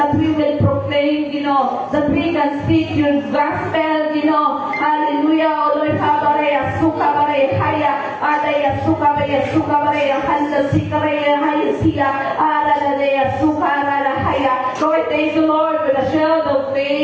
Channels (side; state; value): both; identical; correlation 1.00